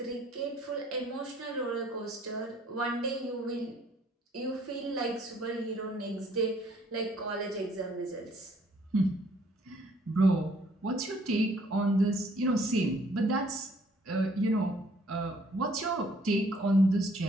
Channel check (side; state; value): both; normal; correlation 0.62